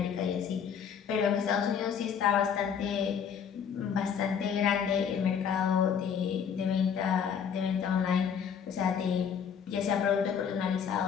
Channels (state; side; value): quieter; right; 7.5 dB